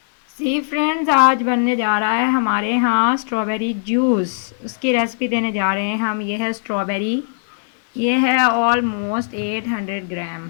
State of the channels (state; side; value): silent; right; digital silence